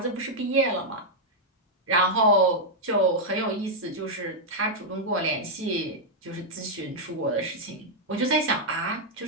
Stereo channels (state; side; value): normal; both; correlation -0.04